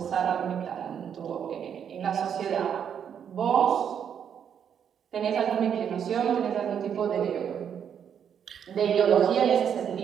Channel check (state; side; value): quieter; left; 8.2 dB